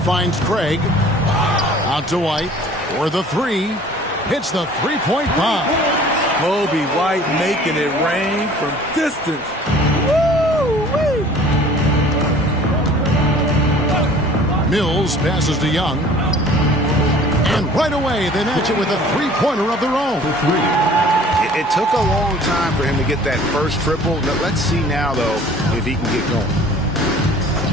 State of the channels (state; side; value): normal; both; correlation 0.49